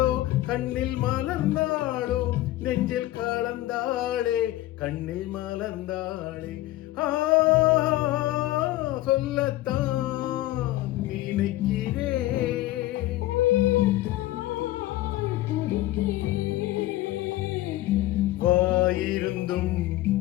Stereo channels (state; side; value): quieter; right; 16.3 dB